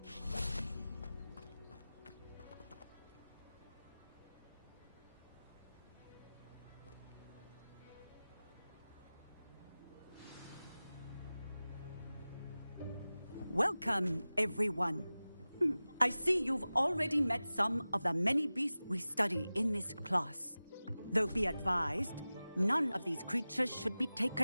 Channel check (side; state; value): both; inverted; correlation -0.97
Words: Welcome, everyone. I see you've already met some of the many beasts we study in this class. Though be advised, none of these creatures should be